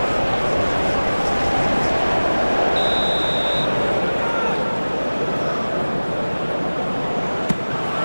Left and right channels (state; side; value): inverted; both; correlation -1.00